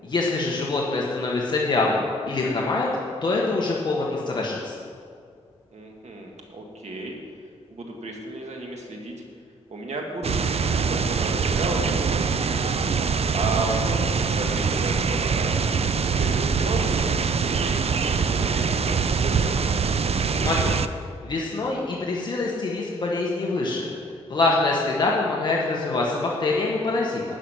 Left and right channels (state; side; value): normal; both; correlation 0.54